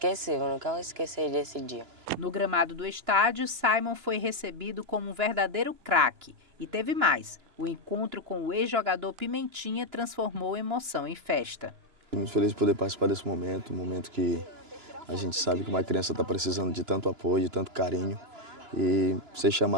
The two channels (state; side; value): late; left; 2.9 ms